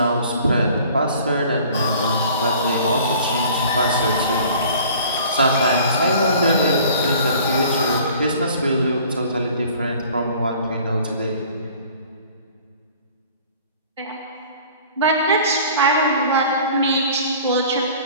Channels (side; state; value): both; inverted; correlation -0.49